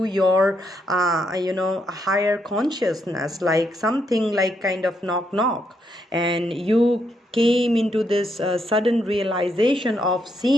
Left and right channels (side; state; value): both; normal; correlation 0.77